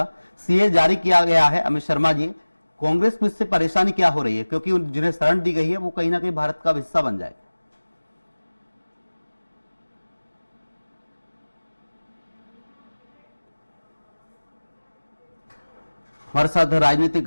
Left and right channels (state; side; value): inverted; both; correlation -1.00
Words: सीए जारी किया गया है। अमित शर्मा जी, कांग्रेस में इससे परेशानी क्या हो रही है, क्योंकि जिन्हें शरण दी गई है वो कहीं ना कहीं भारत का हिस्सा बन जाए? हमारे साथ